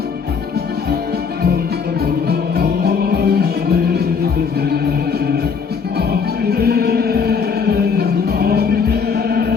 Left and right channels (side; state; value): right; quieter; 5.9 dB